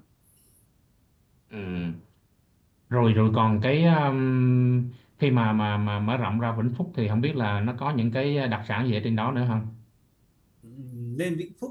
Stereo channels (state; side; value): identical; both; correlation 1.00